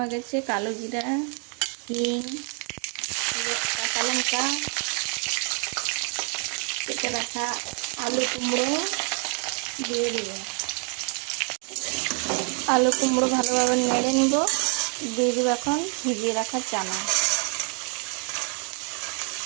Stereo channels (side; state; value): left; quieter; 36.8 dB